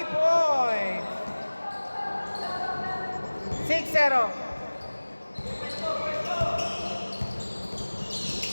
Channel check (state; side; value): inverted; both; correlation -1.00